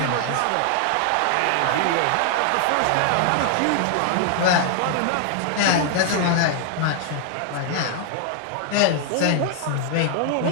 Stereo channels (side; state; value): both; different; correlation 0.00